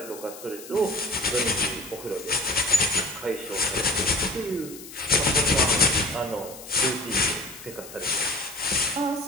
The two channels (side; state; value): left; noise; hiss, 15 dB below the sound